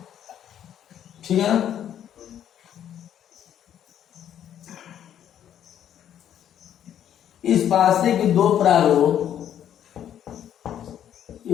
ठीक है ना। इस पासे के दो प्रारूप,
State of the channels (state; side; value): quieter; right; 10.2 dB